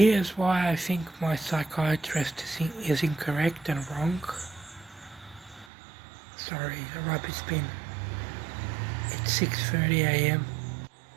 why I think my psychiatrist is incorrect and wrong. Sorry, a rubbish bin. It's 6:30 a.m.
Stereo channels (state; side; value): drops out; left; at 5.7 s